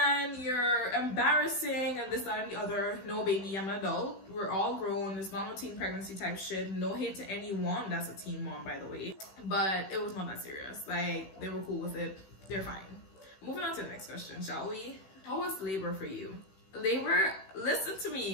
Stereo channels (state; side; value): late; right; 16 ms